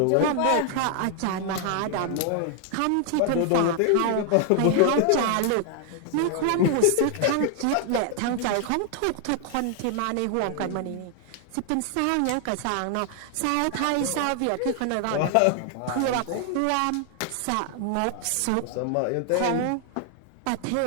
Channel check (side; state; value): both; different; correlation 0.00